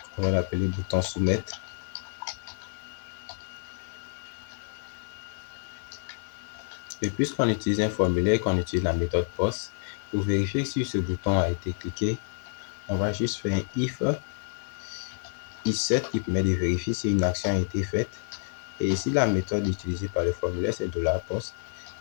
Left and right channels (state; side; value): silent; right; digital silence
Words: On va l'appeler bouton soumettre. Et puisqu'on utilise un formulaire, qu'on utilise la méthode post, pour vérifier si ce bouton a été cliqué, on va juste faire un if set qui permet de vérifier si une action a été faite. Et ici, la méthode utilisée par le formulaire, c'est $post.